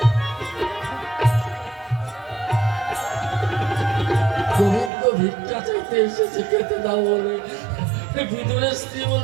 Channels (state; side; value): drops out; left; at 4.9 s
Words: গোবিন্দ ভিক্ষা চাইতে এসেছে খেতে দাও বলে। বিদুরের স্ত্রী